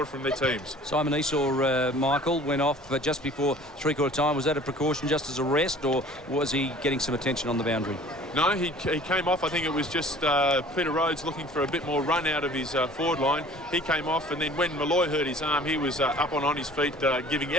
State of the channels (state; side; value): normal; both; correlation 0.48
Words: from their teams. Simon Esau, Michael, went off just before three-quarter time. Was that a precaution just as a rest, or was he getting some attention on the boundary? No, he came off. I think it was just Peter Rhodes looking for a bit more run out of his forward line. He came off, and then when Malloy hurt his arm, he was up on his feet, giving